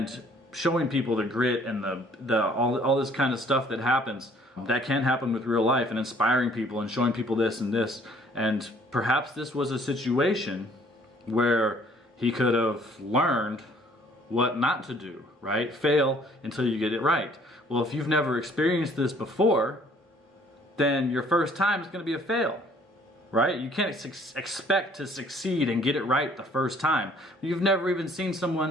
showing people the grit and all this kind of stuff that happens, that can happen with real life, and inspiring people and showing people this and this, and perhaps this was a situation where he could have learned what not to do, right? Fail until you get it right. Well, if you've never experienced this before, then your first time is going to be a fail, right? You can't expect to succeed and get it right the first time. You've never even seen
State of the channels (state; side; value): normal; both; correlation 0.59